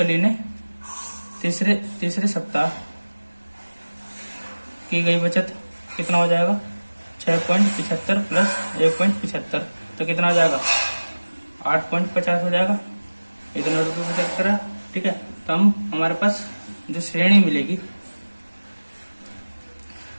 ने तीसरे सप्ताह की गई बचत कितना हो जाएगा, 6.75 प्लस 1.75, तो कितना हो जाएगा, 8.50 हो जाएगा। इतने रुपये बचत करा। ठीक है, तो हम हमारे पास जो श्रेणी मिलेगी,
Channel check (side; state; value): both; inverted; correlation -1.00